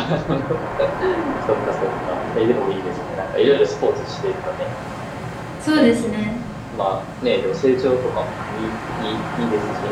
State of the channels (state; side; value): identical; both; correlation 1.00